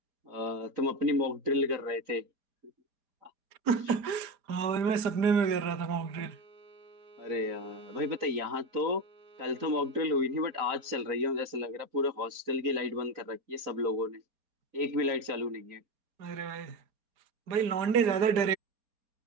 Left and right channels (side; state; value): left; late; 4.3 ms